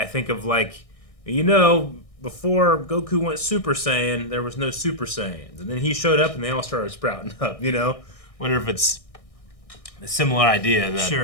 think of before Goku went Super Saiyan, there was no Super Saiyans, and then he showed up and they all started sprouting up. Wonder if it's a similar idea that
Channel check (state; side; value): late; right; 1.6 ms